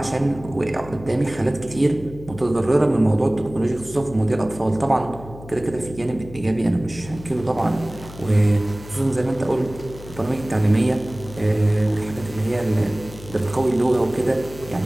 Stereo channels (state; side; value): noise; left; hum, 16 dB below the sound